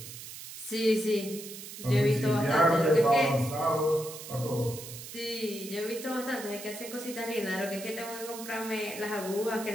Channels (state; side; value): noise; right; hiss, 12 dB below the sound